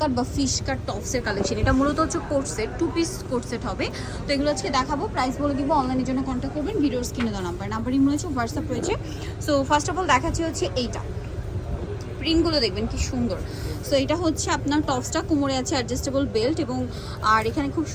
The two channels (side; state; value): both; identical; correlation 1.00